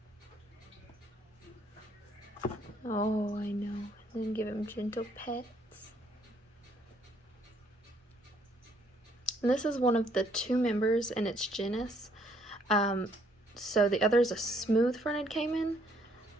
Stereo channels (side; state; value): both; normal; correlation 0.67